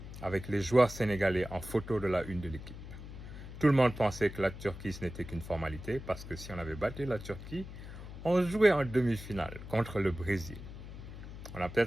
avec les joueurs sénégalais en photo de la une de l'équipe. Tout le monde pensait que la Turquie, ce n'était qu'une formalité, parce que si on avait battu la Turquie, on jouait en demi-finale contre le Brésil. On a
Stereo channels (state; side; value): noise; left; hum, 12 dB below the sound